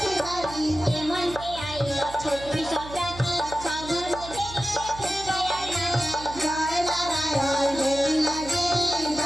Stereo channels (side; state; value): right; noise; hum, 14 dB below the sound